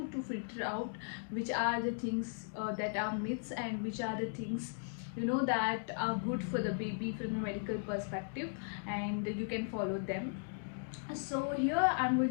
to filter out which are the things that are myths and which are the things that are good for the baby from a medical perspective, and you can follow them. So here I'm going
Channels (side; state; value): right; silent; digital silence